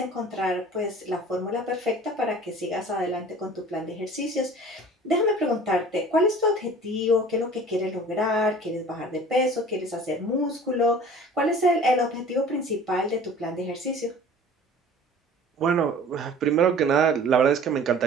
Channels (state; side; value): normal; both; correlation 0.45